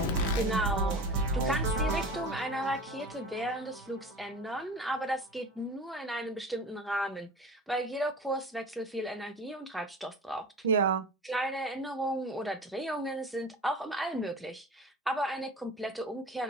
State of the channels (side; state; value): both; normal; correlation 0.36